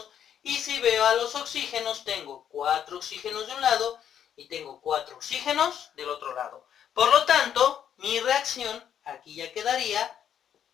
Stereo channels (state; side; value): quieter; right; 9.3 dB